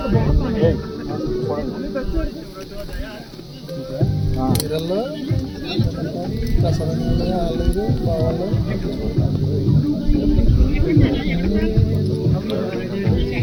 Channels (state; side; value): identical; both; correlation 1.00